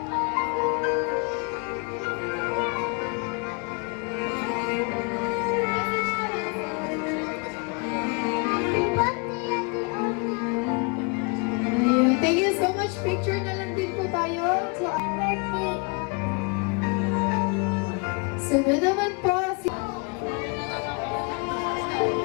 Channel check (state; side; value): quieter; right; 32.9 dB